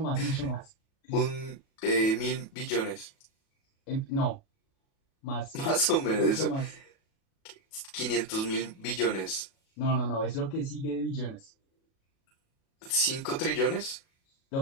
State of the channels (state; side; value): late; right; 37 ms